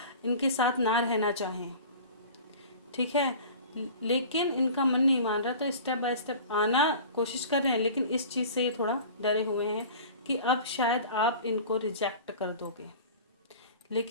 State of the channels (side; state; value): both; inverted; correlation -0.40